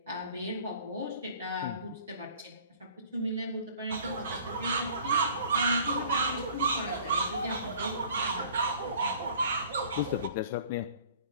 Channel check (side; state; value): both; inverted; correlation -0.50